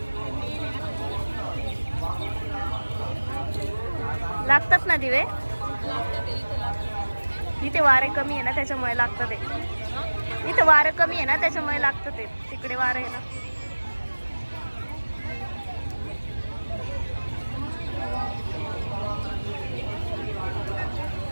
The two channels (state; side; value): inverted; both; correlation -1.00